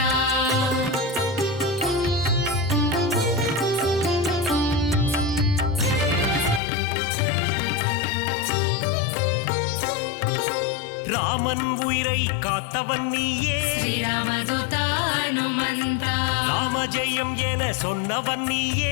ராமன் உயிரை காத்தவன் நீயே ஸ்ரீராமதூத ஹனுமந்தா ராமஜெயம் என சொன்னவன் நீயே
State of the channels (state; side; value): drops out; right; at 6.6 s